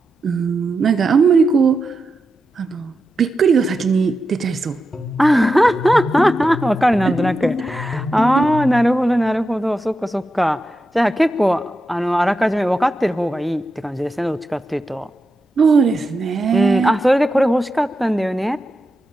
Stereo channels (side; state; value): both; normal; correlation 0.89